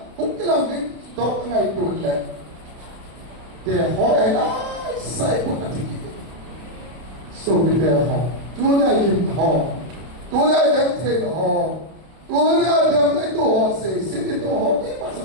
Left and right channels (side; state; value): left; late; 31 ms